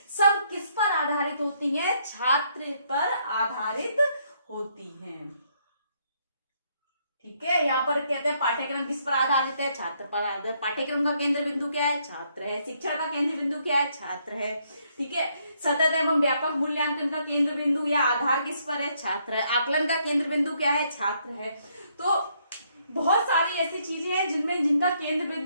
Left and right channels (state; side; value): inverted; both; correlation -0.72